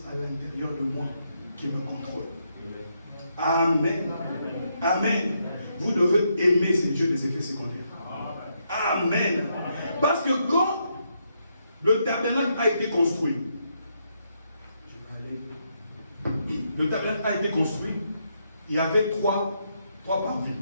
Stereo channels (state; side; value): inverted; both; correlation -0.78